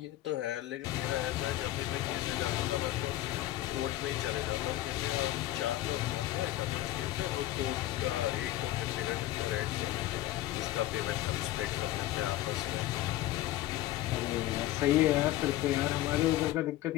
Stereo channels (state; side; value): quieter; right; 15.0 dB